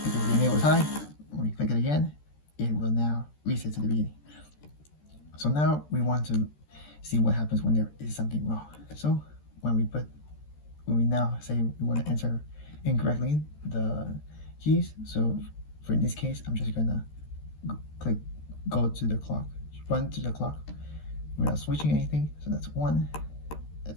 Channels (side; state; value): right; late; 13 ms